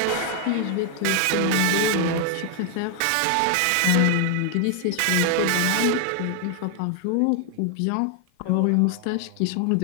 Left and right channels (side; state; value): both; different; correlation 0.00